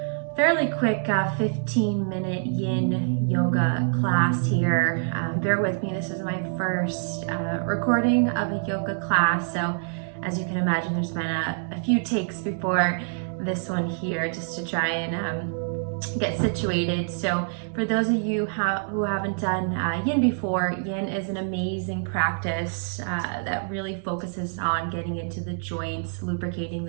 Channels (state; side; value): silent; left; digital silence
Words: fairly quick 15-minute yin yoga class here. Bear with me, this is my first recording of a yoga class, so as you can imagine, there's been a few takes before this one here just to try and get situated. So for those of you who haven't done yin before, yin is an amazing practice that really focuses on getting into the joints, lubricating